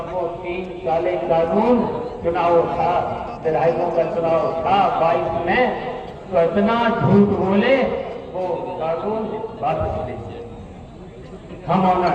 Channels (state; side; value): identical; both; correlation 1.00